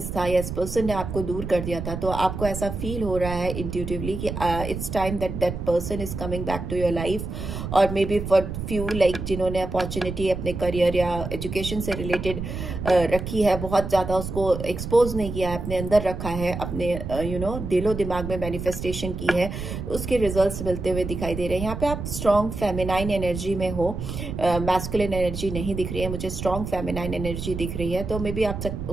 था या इस पर्सन ने आपको दूर कर दिया था, तो आपको ऐसा फील हो रहा है इंट्यूटिवली कि it's time that person is coming back to your life. और maybe for few like जिन्होंने अपॉर्चुनिटी अपने करियर या एजुकेशन से रिलेटेड रखी है, बहुत ज़्यादा उसको एक्सपोज नहीं किया है, अपने अंदर रखा है, अपने दिलो दिमाग में मैनिफेस्टेशन की है, उसके रिजल्ट्स मिलते हुए दिखाई दे रहे हैं। यहाँ पे आप स्ट्रॉन्ग फेमिनाइन एनर्जी में हो, मैस्कुलिन एनर्जी नहीं दिख रही है मुझे, स्ट्रॉन्ग फेमिनाइन एनर्जी दिख रही है। तो मे बी आप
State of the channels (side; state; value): right; noise; rumble, 6 dB below the sound